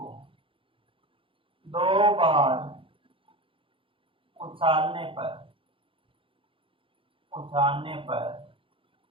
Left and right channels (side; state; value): left; late; 0.25 ms